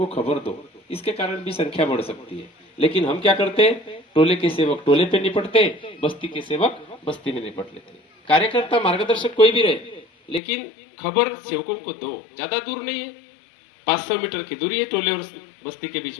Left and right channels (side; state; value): right; drops out; at 10.4 s